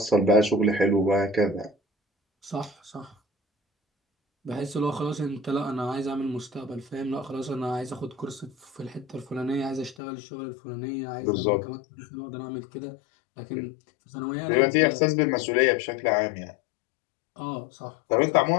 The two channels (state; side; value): drops out; right; at 10.0 s